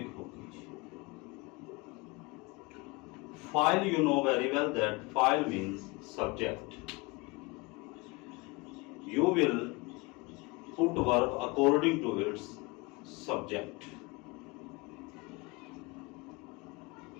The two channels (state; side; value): quieter; right; 25.6 dB